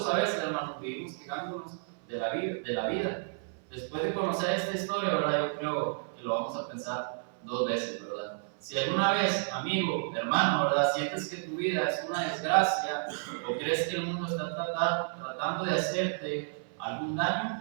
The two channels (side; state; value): left; silent; 57 dB below the other